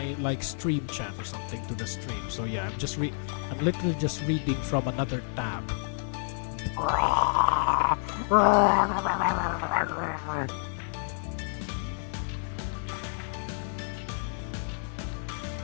like stream chat or something to the stream. So yeah, I'm literally just reading from another tab.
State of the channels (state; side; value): silent; right; 57 dB below the other